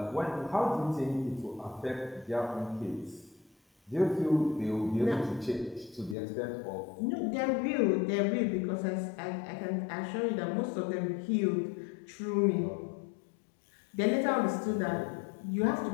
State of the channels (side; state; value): right; drops out; at 6.2 s